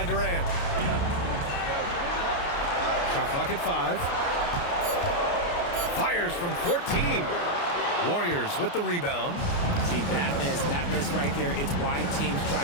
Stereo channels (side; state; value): right; late; 29 ms